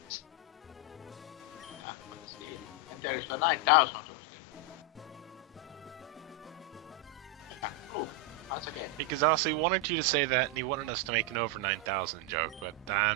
Yeah, but still. And there is the 9,000 of them. Yeah, oh, once again. Because Aussie wanted you to say that and he wanted us to make an over 9,000 joke, but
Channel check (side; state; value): both; normal; correlation 0.01